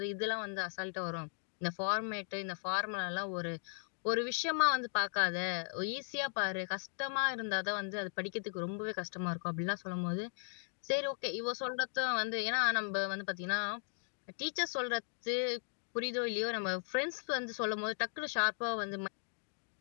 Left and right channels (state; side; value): silent; right; 53 dB below the other